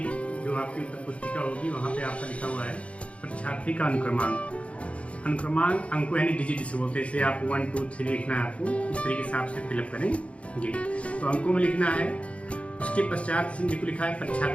जो आपकी उत्तर पुस्तिका होगी वहाँ पे आपका लिखा हुआ है परीक्षार्थी का अनुक्रमांक। अनुक्रमांक अंकों यानी डिजिट जिसे बोलते हैं, जैसे आप 1 2 3 लिखना है, आपको इस तरीके से आपसे फिलअप करेंगे। तो अंकों में लिखना है। उसके पश्चात इसमें लिखा है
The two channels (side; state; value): right; late; 0.062 ms